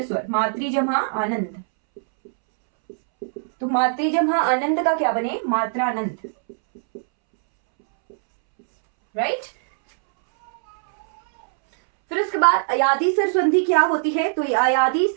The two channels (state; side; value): silent; left; 65 dB below the other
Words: स्वर, मातृ जमा आनंद, तो मातृ जमा आनंद का क्या बने, मात्रानंद, राइट। फिर उसके बाद अयादी स्वर संधि क्या होती है, तो अयादी